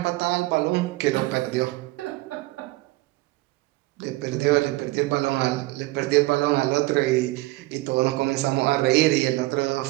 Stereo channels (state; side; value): quieter; left; 20.3 dB